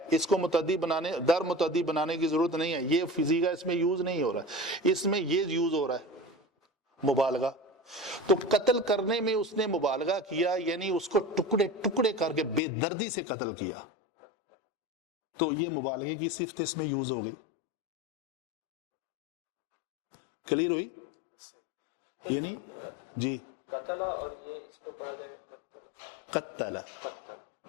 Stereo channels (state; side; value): drops out; right; at 12.6 s